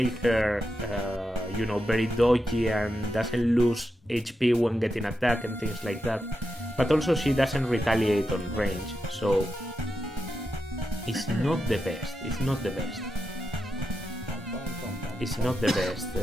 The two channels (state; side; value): normal; both; correlation 0.87